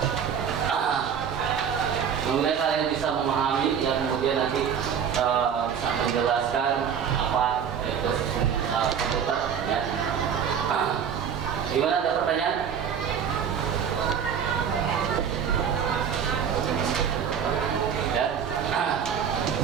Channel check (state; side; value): quieter; left; 7.7 dB